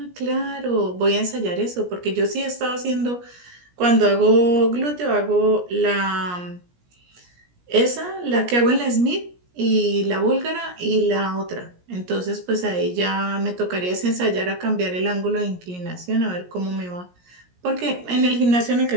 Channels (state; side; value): late; left; 17 ms